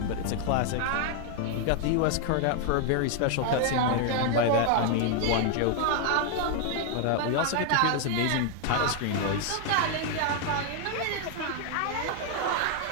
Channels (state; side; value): different; both; correlation 0.00